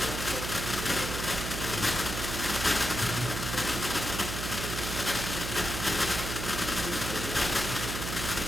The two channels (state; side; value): noise; right; hum, 4 dB below the sound